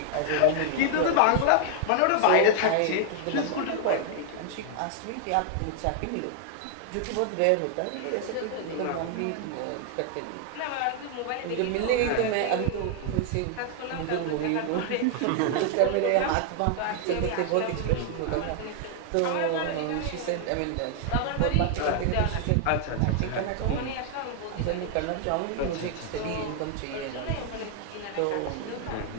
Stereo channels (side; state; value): both; different; correlation 0.00